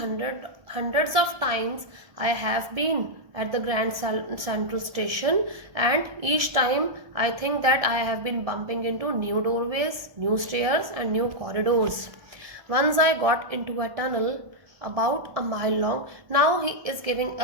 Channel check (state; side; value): late; left; 1.6 ms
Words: hundreds of times I have been at the Grand Central Station, and each time I think that I have been bumping into new doorways, new stairs and new corridors. Once I got into a tunnel about a mile long. Now he is giving